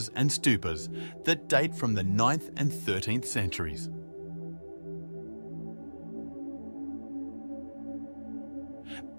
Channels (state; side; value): inverted; both; correlation -1.00